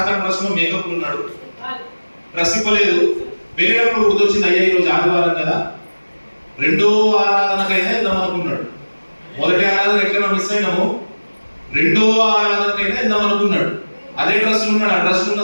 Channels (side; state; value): both; inverted; correlation -1.00